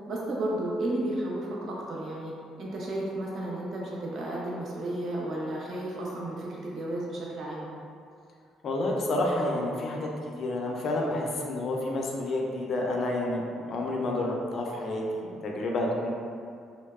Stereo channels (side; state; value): both; normal; correlation 0.71